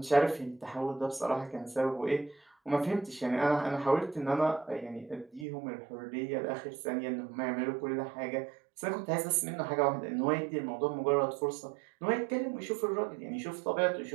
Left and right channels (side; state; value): left; drops out; at 5.5 s